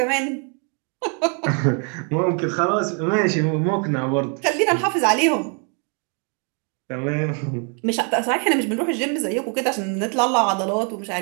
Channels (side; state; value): left; quieter; 39.3 dB